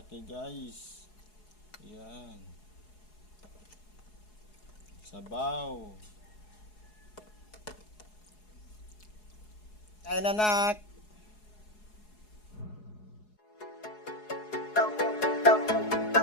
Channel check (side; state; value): right; late; 4.7 ms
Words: guys. Yan. Sabaw. Kain anak.